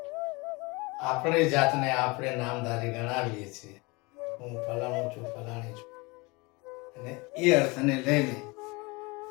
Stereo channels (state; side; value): quieter; right; 25.8 dB